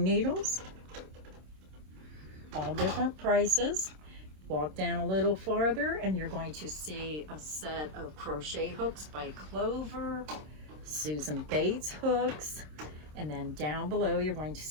needles. All different prices. Walk down a little farther and you're going to see a set of crochet hooks by Clover, Susan Bates hooks, and then down below you're going to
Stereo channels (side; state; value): left; late; 26 ms